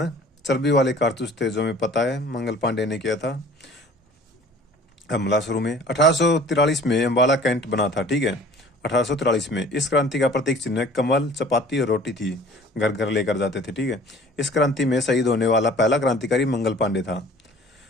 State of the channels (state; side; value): normal; both; correlation 0.48